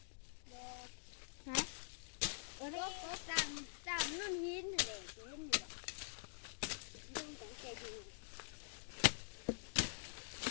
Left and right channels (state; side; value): silent; right; digital silence